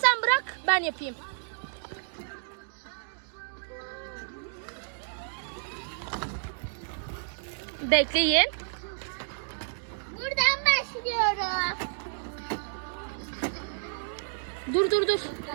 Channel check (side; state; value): left; silent; digital silence